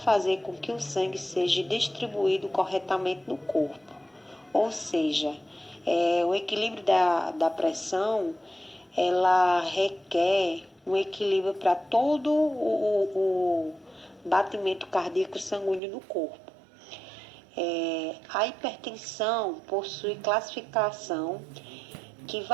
com que o sangue seja distribuído corretamente no corpo. Ou seja, o equilíbrio da pressão, ela requer um equilíbrio para todo o batimento cardíaco sanguíneo no corpo. A hipertensão possui classificação que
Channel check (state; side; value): drops out; left; at 15.8 s